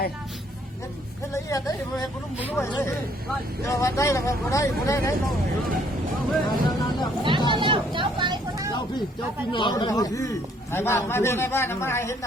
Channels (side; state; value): both; normal; correlation 0.64